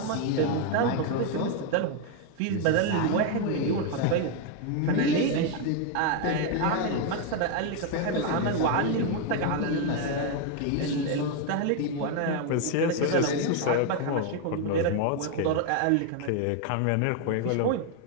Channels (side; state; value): both; different; correlation 0.01